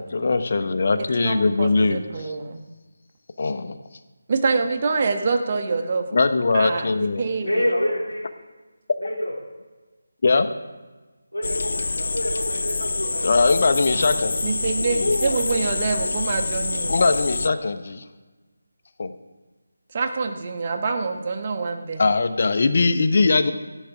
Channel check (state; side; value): inverted; both; correlation -0.91